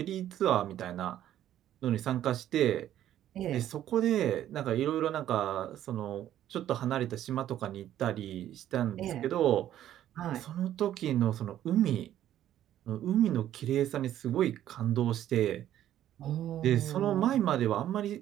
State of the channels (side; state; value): left; quieter; 11.9 dB